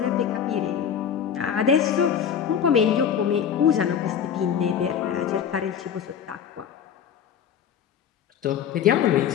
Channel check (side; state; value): right; quieter; 8.2 dB